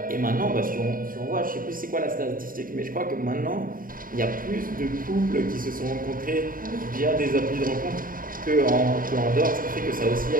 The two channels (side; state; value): left; late; 0.41 ms